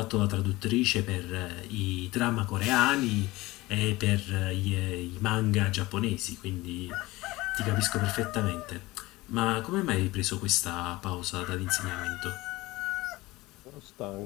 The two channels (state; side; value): quieter; right; 19.9 dB